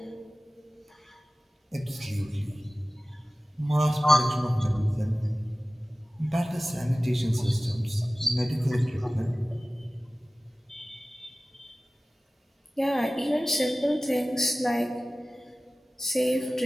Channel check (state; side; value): normal; both; correlation 0.96